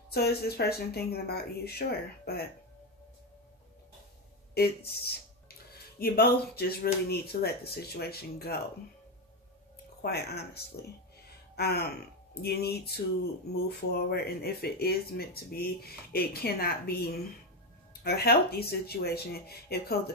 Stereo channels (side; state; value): both; normal; correlation 0.11